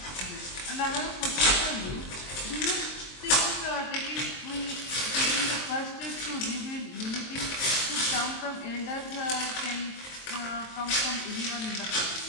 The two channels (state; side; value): late; right; 23 ms